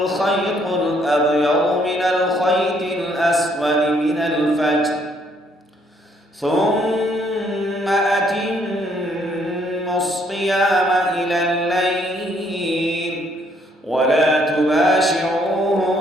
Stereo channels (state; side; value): normal; both; correlation 0.68